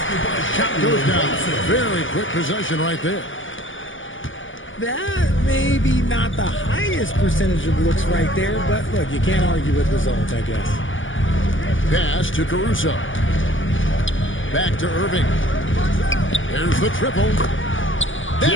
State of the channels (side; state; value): right; late; 0.57 ms